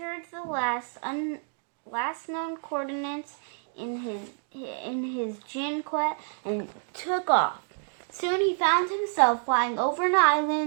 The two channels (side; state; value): left; silent; 57 dB below the other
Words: the last known coordinates in his Jinquet and took off. Soon he found himself flying over an